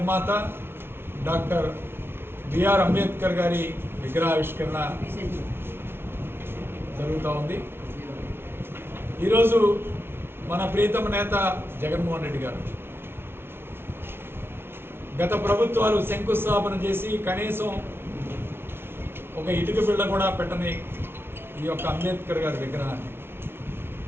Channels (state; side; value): late; left; 0.11 ms